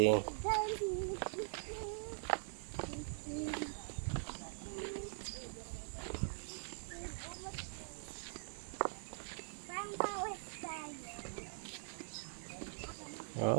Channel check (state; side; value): silent; left; digital silence